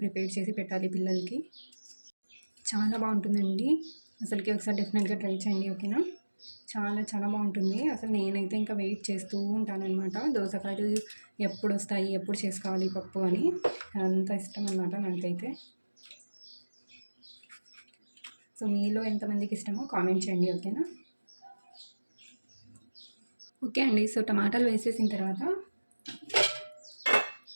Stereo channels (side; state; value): both; inverted; correlation -1.00